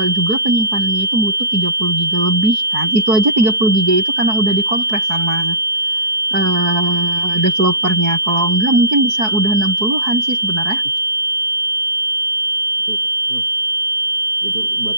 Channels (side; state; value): left; late; 4.7 ms